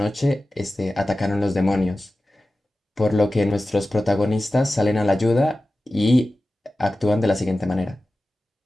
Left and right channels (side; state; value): both; normal; correlation 0.95